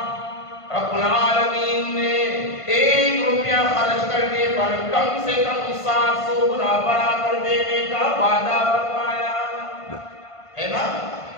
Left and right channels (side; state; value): right; late; 1.5 ms